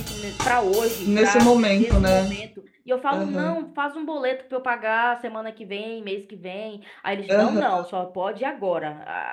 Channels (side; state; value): both; identical; correlation 1.00